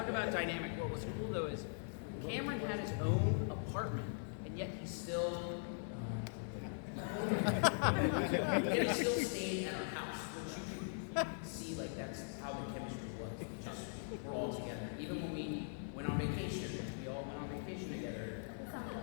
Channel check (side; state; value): right; silent; digital silence